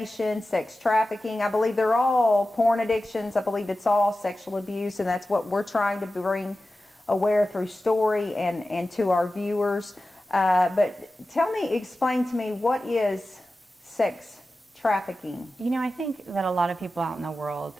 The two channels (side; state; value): both; normal; correlation 0.94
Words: sex trafficking, I believe they're all porn addictions. I believe it's all sexual abuse, and that's what we're trying to bring aware through story and to our viewers. But explain to me, what is sex trafficking? You know, I think that a lot of people out in the world